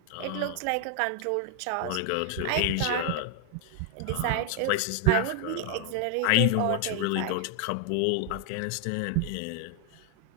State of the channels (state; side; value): different; both; correlation 0.00